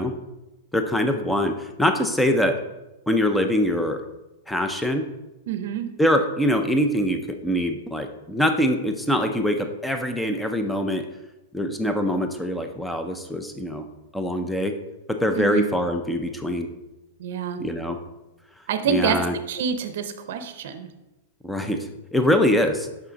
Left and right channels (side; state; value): both; normal; correlation 0.47